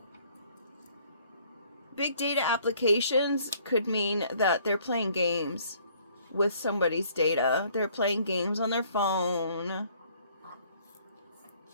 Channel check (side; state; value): both; inverted; correlation -0.61